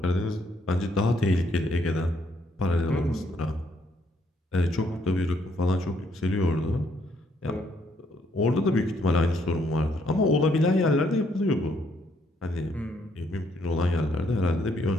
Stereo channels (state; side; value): normal; both; correlation 0.71